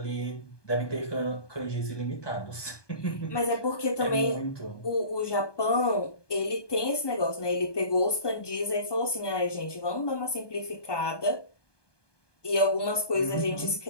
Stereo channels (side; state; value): right; late; 1.2 ms